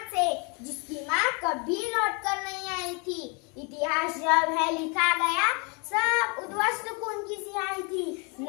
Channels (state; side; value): quieter; right; 33.4 dB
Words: से जिसकी माँ कभी लौट कर नहीं आई थी। इतिहास जब है लिखा गया सब उद्वस्त खून की सिहाई थी।